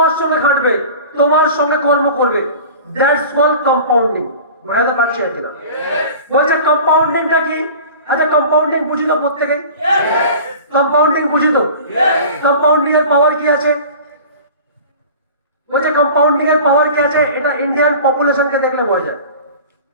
সঙ্গে খাটবে, তোমার সঙ্গে কর্ম করবে। That's called compounding. বুঝতে পারছি কিনা? বলছে কম্পাউন্ডিংটা কি? আচ্ছা কম্পাউন্ডিং বুঝি তো প্রত্যেকে? কম্পাউন্ডিং বুঝি তো? কম্পাউন্ডিং এর পাওয়ার কি আছে? বলছে কম্পাউন্ডিং এর পাওয়ার কি আছে, এটা ইন্ডিয়ান পপুলেশনকে দেখলে বোঝা যায়।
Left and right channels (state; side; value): inverted; both; correlation -0.40